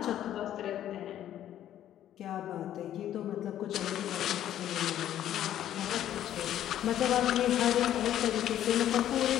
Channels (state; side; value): quieter; right; 11.6 dB